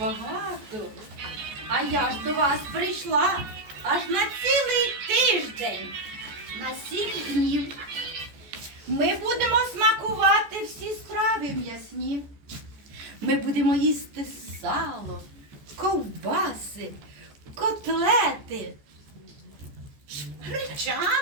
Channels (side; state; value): left; late; 14 ms